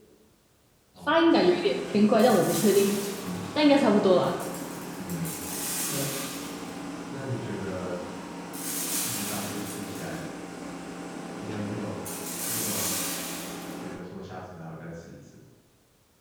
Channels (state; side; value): identical; both; correlation 1.00